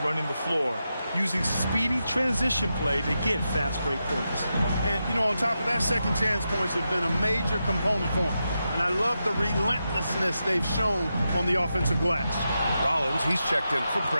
running the floor, using speedy transition play to get fast break points. And, you know, on top of that, second chance points have been a major component for them. And I love the relentlessness they've shown on the offensive glass. Rollins, he's checked in for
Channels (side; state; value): both; inverted; correlation -0.88